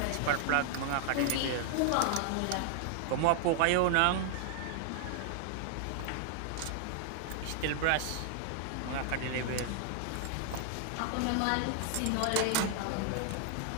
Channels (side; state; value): both; different; correlation 0.00